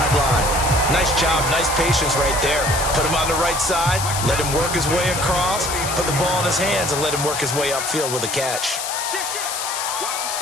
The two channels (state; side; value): noise; left; hiss, 4 dB below the sound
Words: Nice job, nice patience right there. Put him on the right side, let him work his way across, put the ball in his hands, and let him work his way upfield with a catch.